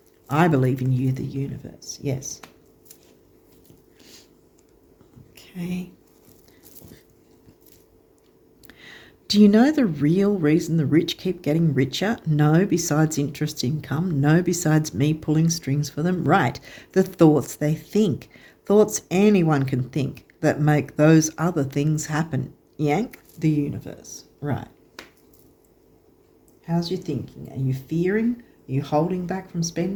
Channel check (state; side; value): identical; both; correlation 1.00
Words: I believe in you, the universe. Yes. Okay. Do you know the real reason the rich keep getting richer? No, besides interest income. No, besides me pulling strings for them. Right, the thoughts they think. Thoughts anyone can think that make those other things happen. Yank, the universe. Right. How's your thinking? Are you fearing? Are you holding back from